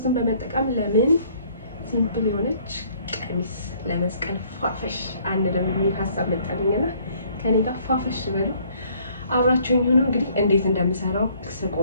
በመጠቀም ለምን ሲምፕል የሆነች ቀሚስ ለመስቀል ፋፈሽ አንድ ደግሞ የሚል ሀሳብ መጣልኝና ከኔ ጋር ፋፈሽ በሉ አብራችሁኝ ሁኑ። እንግዲህ እንዴት እንደምሰራው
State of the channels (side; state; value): both; inverted; correlation -0.61